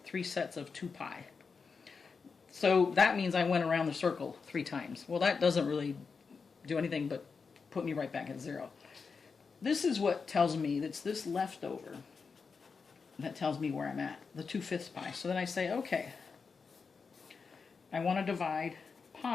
3 sets of 2 pi. So that means I went around the circle 3 times. Well, that doesn't really do anything but put me right back at 0. This is what tells me that's this leftover that tells me where I'm at, the 2 fifths pi. So then I say, okay, I want to divide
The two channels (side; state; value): right; quieter; 5.2 dB